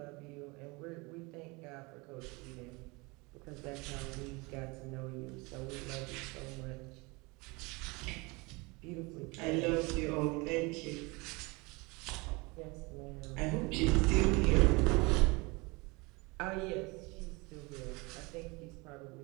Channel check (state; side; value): quieter; left; 26.2 dB